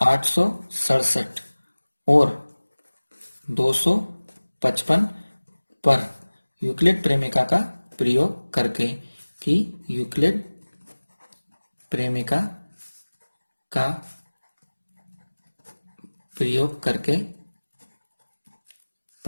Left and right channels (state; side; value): inverted; both; correlation -1.00